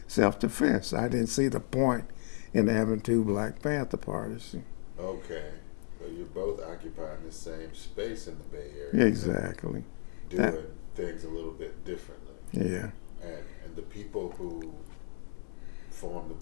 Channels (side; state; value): right; silent; 55 dB below the other